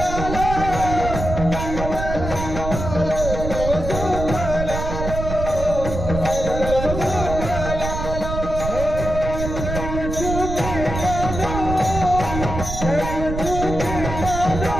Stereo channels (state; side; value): noise; right; rumble, 5 dB below the sound